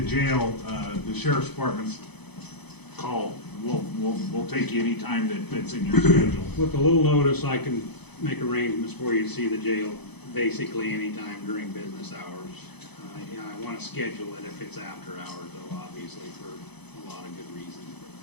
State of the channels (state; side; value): late; right; 0.98 ms